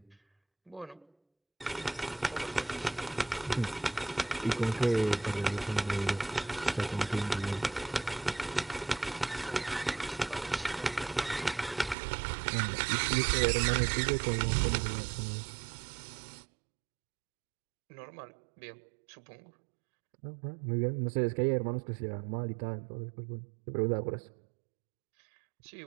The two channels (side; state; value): left; drops out; at 12.0 s